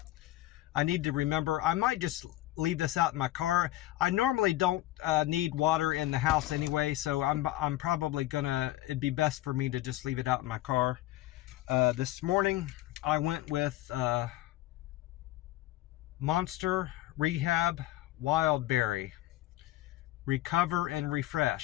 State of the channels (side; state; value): right; quieter; 15.9 dB